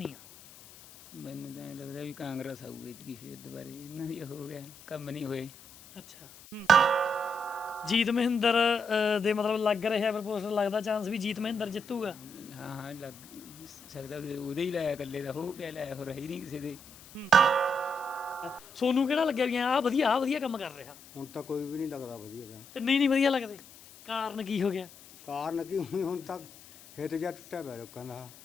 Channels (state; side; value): noise; left; hiss, 20 dB below the sound